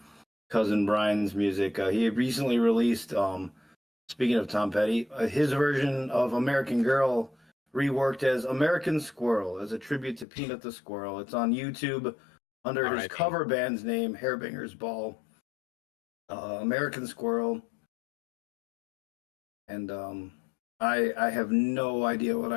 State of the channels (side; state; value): right; drops out; at 10.2 s